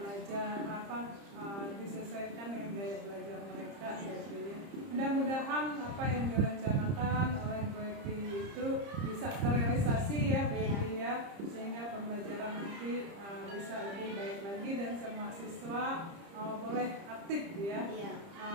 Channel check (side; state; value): left; late; 30 ms